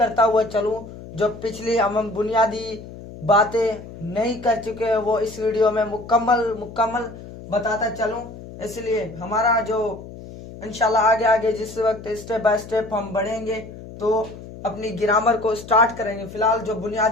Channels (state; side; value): noise; left; hum, 14 dB below the sound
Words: हुआ चलूं, जो पिछली हम बुनियादी बातें नहीं कर चुके हैं वो इस वीडियो में मुकम्मल बताता चलूं। इसलिए हमारा जो इंशाल्लाह आगे आगे जिस वक्त स्टेप बाय स्टेप हम बढ़ेंगे तो अपनी ग्रामर को स्टार्ट करेंगे। फिलहाल जो